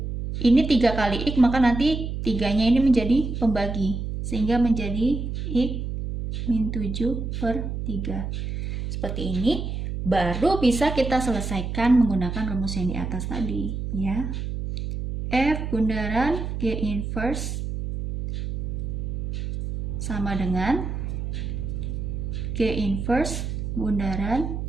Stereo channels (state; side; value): noise; right; hum, 4 dB below the sound